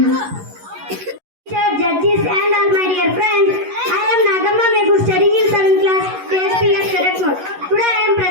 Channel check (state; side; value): late; left; 11 ms